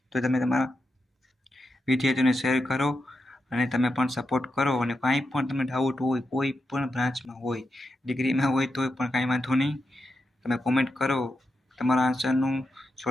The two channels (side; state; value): both; normal; correlation 0.87